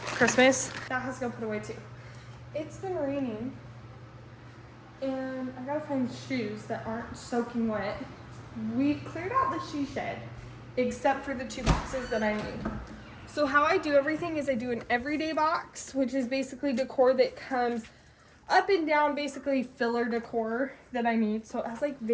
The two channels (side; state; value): both; identical; correlation 1.00